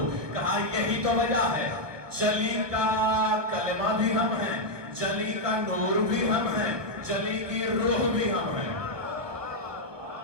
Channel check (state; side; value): late; left; 1.1 ms